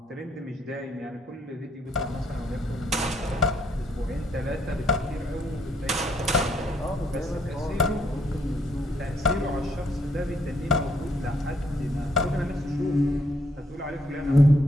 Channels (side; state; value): both; normal; correlation 0.70